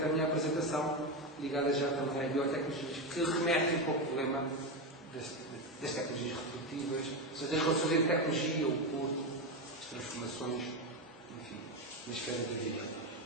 a minha apresentação, ligada já também às biotecnologias, que remetem para o problema das tecnologias reprodutivas, ou seja, das relações entre tecnologia, o corpo, as transformações, enfim, na esfera da vida.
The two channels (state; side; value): normal; both; correlation 0.13